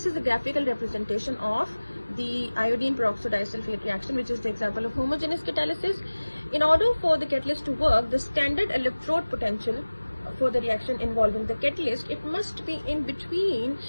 is the graphical representation of the iodine peroxodisulfate reaction, which is the example of homogeneous catalysis. In order for the catalyst to work, the standard electrode potential for the reaction involving the catalyst, it must be in between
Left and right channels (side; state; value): both; inverted; correlation -1.00